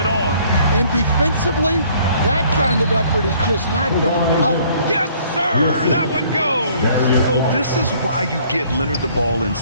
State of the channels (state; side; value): inverted; both; correlation -0.59